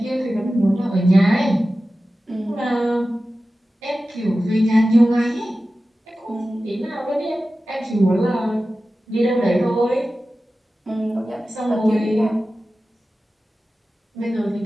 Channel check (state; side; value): normal; both; correlation 0.95